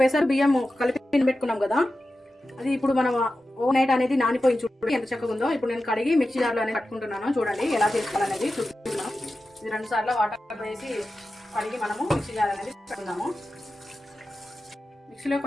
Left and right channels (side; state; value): both; normal; correlation 0.93